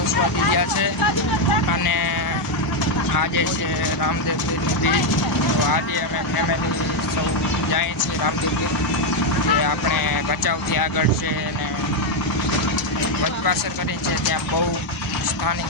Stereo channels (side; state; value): right; late; 1.0 ms